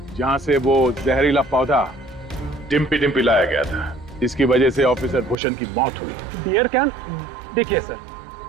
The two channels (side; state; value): left; drops out; at 5.4 s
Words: जहां से वो जहरीला पौधा डिम्पी डिम्पी लाया गया था, जिसकी वजह से ऑफिसर भूषण की मौत हुई। Beer can? देखिए सर,